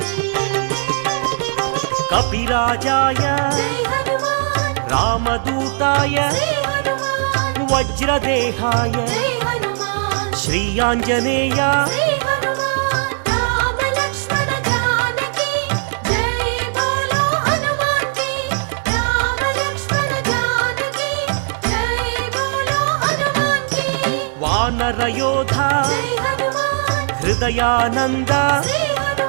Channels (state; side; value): silent; left; 67 dB below the other